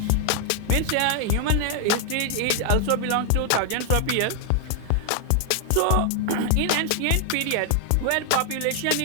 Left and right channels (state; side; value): different; both; correlation 0.00